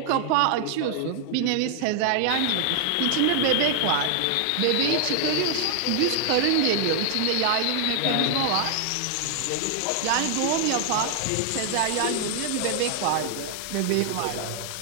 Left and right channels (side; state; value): both; different; correlation 0.00